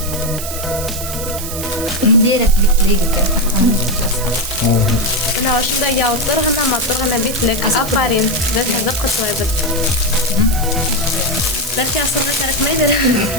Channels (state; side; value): noise; right; hiss, 8 dB below the sound